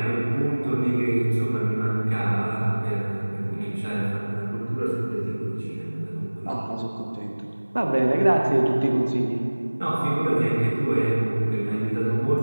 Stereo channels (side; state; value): both; inverted; correlation -1.00